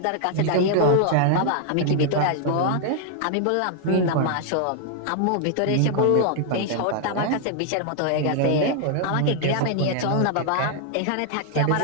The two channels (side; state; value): both; different; correlation 0.00